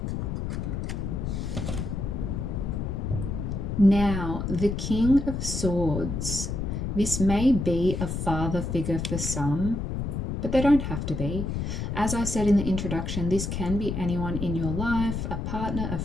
Now, the King of Swords. This may be a father figure for some, but they don't have to be. As I said in the introduction, this can be anyone in your life, a partner, a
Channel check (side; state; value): left; noise; rumble, 3 dB below the sound